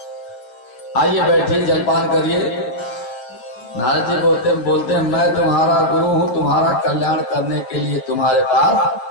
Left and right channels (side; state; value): right; late; 9.0 ms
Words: आइए बैठिए जलपान करिए। नारद जी बोलते हैं मैं तुम्हारा गुरु हूँ, तुम्हारा कल्याण करने के लिए तुम्हारे